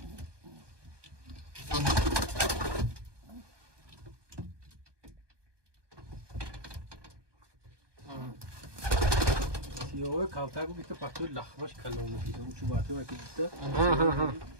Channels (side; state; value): left; late; 1.2 ms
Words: سیاه کاوتر بود که پاکتو لخباش کلام می‌کردم چون باعث می‌شد که